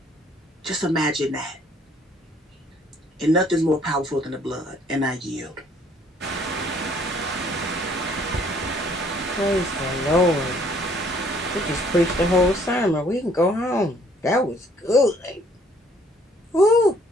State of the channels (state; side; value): normal; both; correlation 0.62